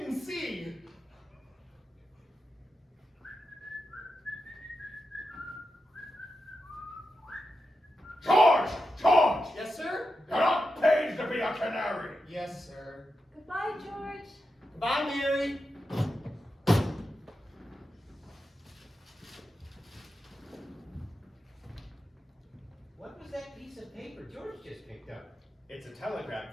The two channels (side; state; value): both; normal; correlation 0.88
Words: see. George! George! Yes, sir? You're not paid to be a canary! Yes, sir. Goodbye, George. Goodbye, Mary. What was that piece of paper George just picked up? It's a telegram